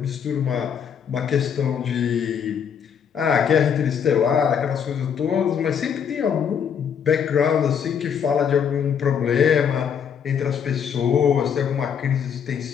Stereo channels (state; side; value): quieter; right; 7.6 dB